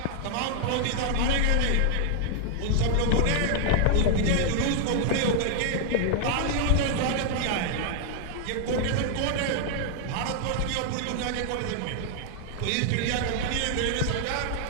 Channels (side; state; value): both; different; correlation 0.00